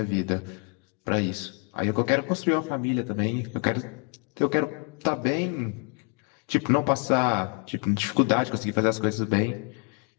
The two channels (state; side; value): quieter; right; 37.4 dB